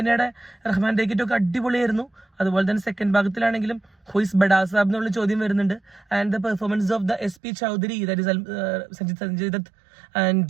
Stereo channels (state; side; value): drops out; left; at 7.4 s